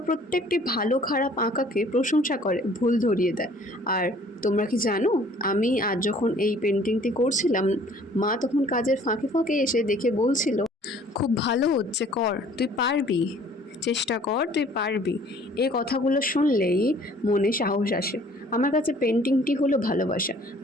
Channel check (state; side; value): normal; both; correlation 0.55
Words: প্রত্যেকটি ভালো খারাপ আঁকাকে প্রশংসা করে, ভুল ধরিয়ে দেয়। আর তোমরা কি জানো আমি আজ যখন এই পেন্টিংটি করছিলাম, মা তখন কাজের ফাঁকে ফাঁকে এসে দেখে বলছিল, খুব ভালো হচ্ছে, কর, তুই পারবি, চেষ্টা কর, তুই পারবি। এই কথাগুলো শুনলেই মনে সাহস আসে। আমার কাছে পেন্টিংটি হলো ভালোবাসা,